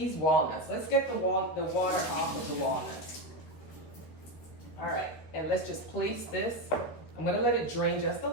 walnuts. Let's get the water off of the walnuts. All right, and let's just place this. I'm gonna let it drain just a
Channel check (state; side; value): late; right; 13 ms